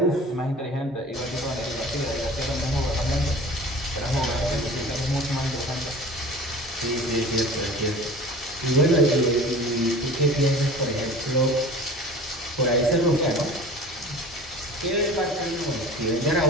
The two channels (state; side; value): normal; both; correlation 0.40